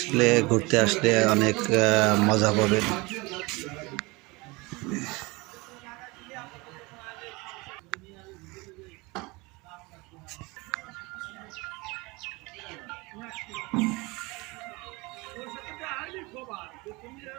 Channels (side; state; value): left; quieter; 24.7 dB